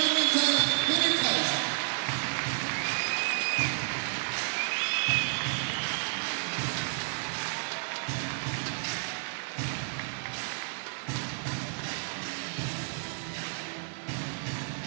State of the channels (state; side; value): silent; left; 57 dB below the other